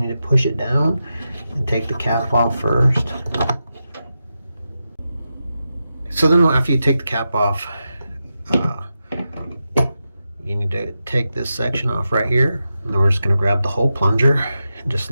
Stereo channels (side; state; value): both; inverted; correlation -0.89